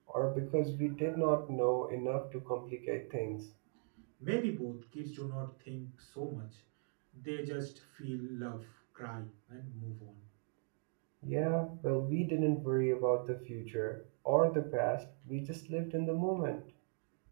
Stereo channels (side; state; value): left; silent; 52 dB below the other